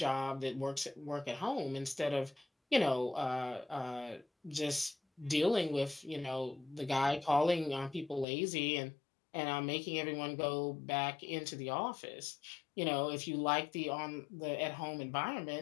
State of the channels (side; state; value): right; drops out; at 8.2 s